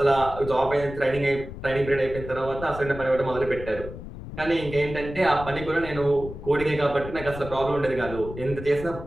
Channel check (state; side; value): noise; left; rumble, 11 dB below the sound